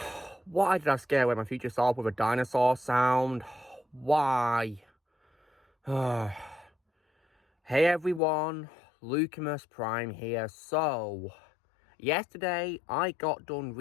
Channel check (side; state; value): right; drops out; at 8.2 s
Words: Why did I scare away my future self with a dinosaur sound? Why? Hey everyone, Lucamus Prime here. So, yesterday I got done